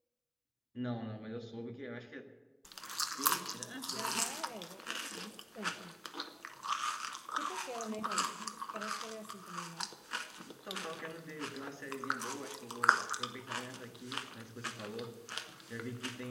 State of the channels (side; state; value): both; identical; correlation 1.00